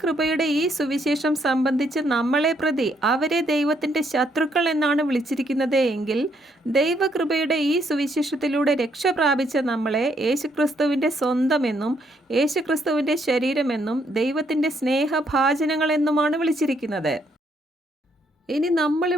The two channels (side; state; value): both; normal; correlation 0.72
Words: ഈ സുവിശേഷം സംബന്ധിച്ച് നമ്മളെ പ്രതി അവരെ ദൈവത്തിൻ്റെ ശത്രുക്കൾ എന്നാണ് വിളിച്ചിരിക്കുന്നത് എങ്കിൽ ദൈവകൃപയുടെ ഈ സുവിശേഷത്തിലൂടെ രക്ഷ പ്രാപിച്ച നമ്മളെ യേശുക്രിസ്തുവിൻ്റെ സ്വന്തമെന്നും യേശുക്രിസ്തുവിൻ്റെ ശരീരമെന്നും ദൈവത്തിൻ്റെ സ്നേഹഭാജനങ്ങളെന്നുമാണ് വിളിച്ചിരിക്കുന്നത്. ഇനി